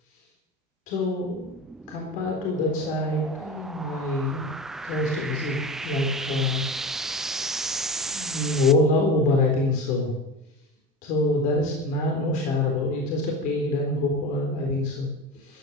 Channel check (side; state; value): both; normal; correlation 0.29